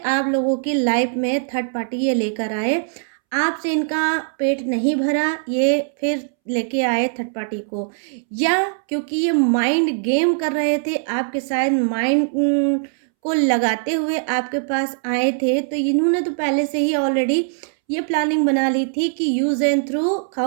लोगों की लाइफ में थर्ड पार्टी ये लेकर आए। आपसे इनका पेट नहीं भरा, ये फिर लेके आए थर्ड पार्टी को, या क्योंकि ये माइंड गेम कर रहे थे आपके साथ, माइंड को लगाते हुए आपके पास आए थे। तो इन्होंने तो पहले से ही ऑलरेडी ये प्लानिंग बना ली थी कि यूज़ एंड थ्रू,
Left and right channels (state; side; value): silent; left; 65 dB below the other